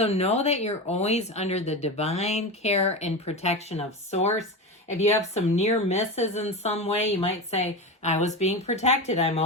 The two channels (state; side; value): normal; both; correlation 0.22